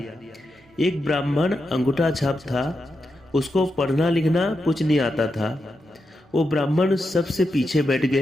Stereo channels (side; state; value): both; normal; correlation 0.87